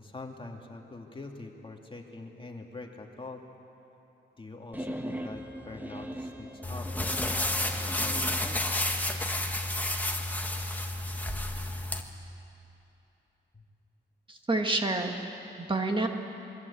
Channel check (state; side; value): normal; both; correlation 0.41